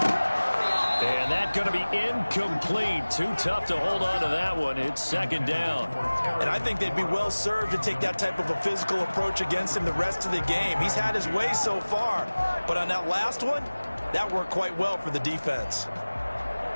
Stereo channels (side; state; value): both; inverted; correlation -1.00